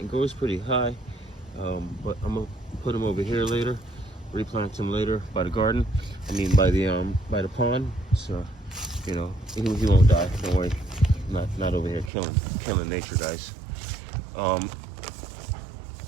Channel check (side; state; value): left; drops out; at 12.1 s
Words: It grows pretty high, but I'm gonna put them over here later. Replant them later by the garden. By the pond. So, he won't die. Don't worry. Not over here killing nature, guys.